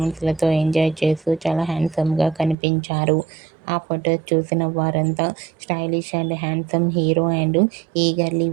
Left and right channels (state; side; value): drops out; left; at 2.6 s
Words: ఎంజాయ్ చేస్తూ చాలా హ్యాండ్సమ్గా కనిపించారు. ఆ ఫొటోస్ చూసిన వారంతా stylish and handsome hero and eagerly